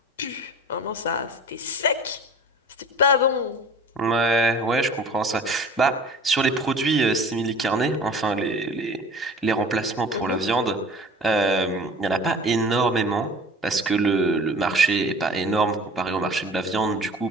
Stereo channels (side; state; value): both; normal; correlation 0.43